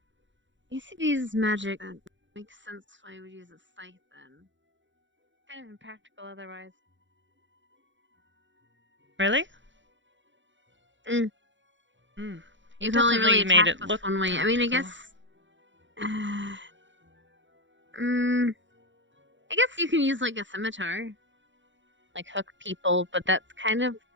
ACB's magic. That makes sense why I would use a scythe then. Kind of impractical otherwise. Really? Mm. He You can only definitely really made attack it with look one way. I mean, I practical. guess. I guess you can use like a scimitar, like hook people, but that's kind of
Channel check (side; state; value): left; late; 0.54 ms